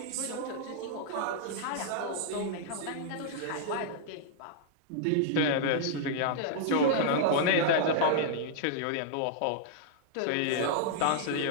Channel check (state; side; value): different; both; correlation -0.01